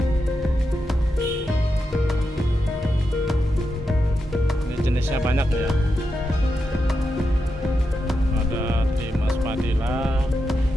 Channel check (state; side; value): normal; both; correlation 0.87